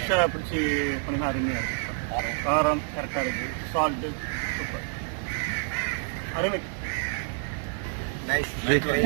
பிடிச்சி பண்ணினா அருமையா இருக்கு. காரம் கரெக்டா இருக்கு. Salt super. அருமை.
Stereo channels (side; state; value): left; silent; 60 dB below the other